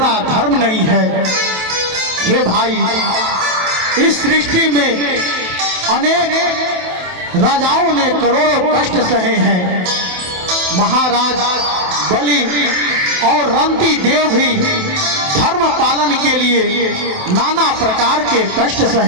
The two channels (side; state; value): left; late; 27 ms